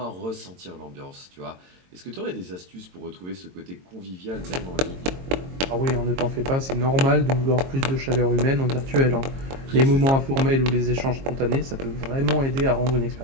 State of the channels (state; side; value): late; left; 22 ms